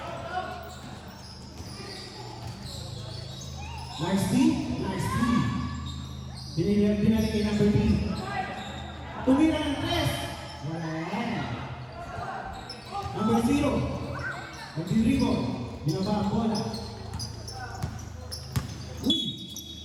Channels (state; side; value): identical; both; correlation 1.00